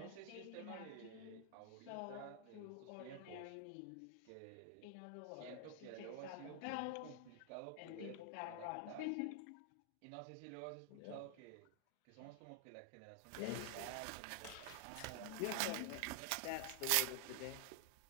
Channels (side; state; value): both; different; correlation 0.00